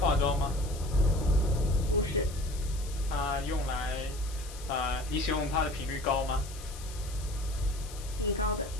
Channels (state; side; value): noise; left; hiss, 15 dB below the sound